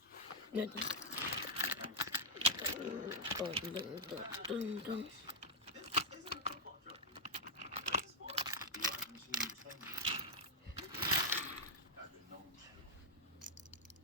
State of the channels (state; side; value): normal; both; correlation -0.04